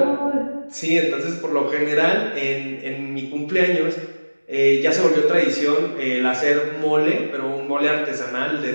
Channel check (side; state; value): both; inverted; correlation -1.00